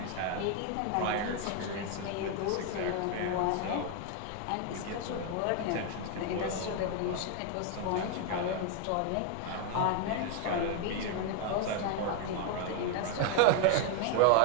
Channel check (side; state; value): both; different; correlation 0.01